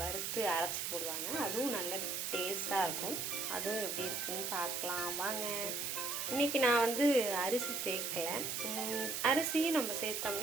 வறுத்து அரைச்சி போடுவாங்க, அதுவும் நல்ல டேஸ்ட்டாக இருக்கும். அதுவும் எப்படி இருக்குன்னு பார்க்கலாம் வாங்க. இன்றைக்கி நான் அரிசி சேர்க்கலை. அரிசியும் நம்ம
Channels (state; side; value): noise; right; hiss, 2 dB below the sound